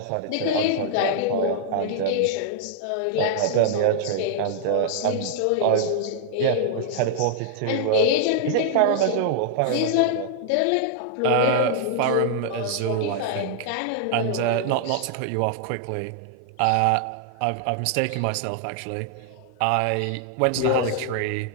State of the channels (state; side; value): different; both; correlation -0.01